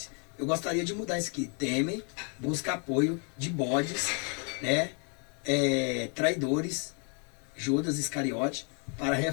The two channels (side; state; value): right; quieter; 38.5 dB